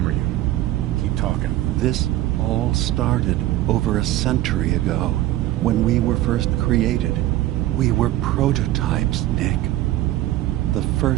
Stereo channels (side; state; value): left; quieter; 15.0 dB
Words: you. Keep talking. This all started over a century ago, when we were first created. We were prototypes, Nick. The